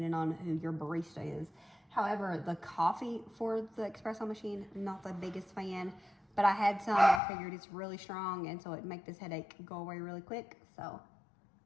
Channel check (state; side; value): drops out; right; at 7.2 s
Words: on who your barista is. However, the coffee for the espresso machine, not the biggest fan. But I had some, and I figured it's really strong, and so it'd make this headache go away really quick. So